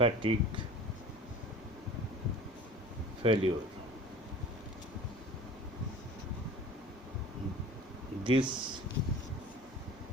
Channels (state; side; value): normal; both; correlation 0.42